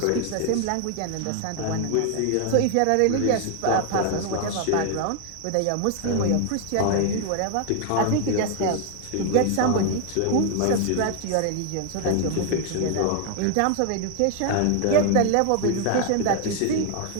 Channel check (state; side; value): different; both; correlation 0.00